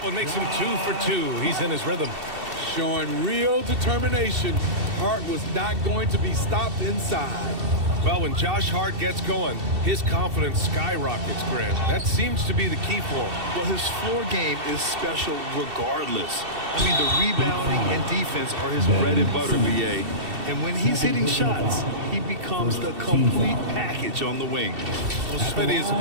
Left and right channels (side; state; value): left; late; 2.7 ms